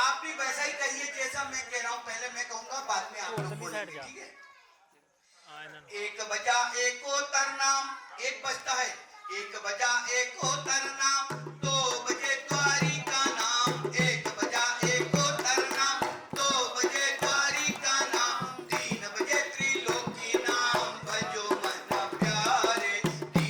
भी वैसा ही कहिए जैसा मैं कह रहा हूं। पहले मैं कहूंगा, बाद में आप लोग बोलेंगे, ठीक है। एक बजा एक ओतर नाम, एक बजता है, एक बजा एक ओतर नाम, 2 बजे द्वारी का नाम, एक बजा एक ओतर नाम, 2 बजे द्वारी का नाम, 3 बजे त्रिलोकी नाम, भजो मन प्यारे,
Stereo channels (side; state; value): both; identical; correlation 1.00